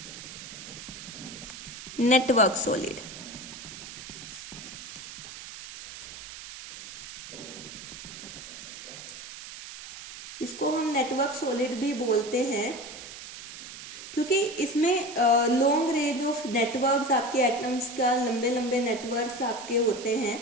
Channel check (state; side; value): noise; right; hiss, 12 dB below the sound